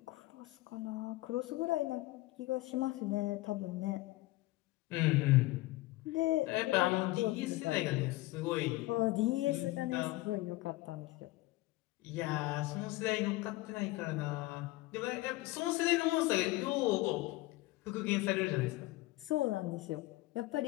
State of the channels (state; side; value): quieter; right; 19.6 dB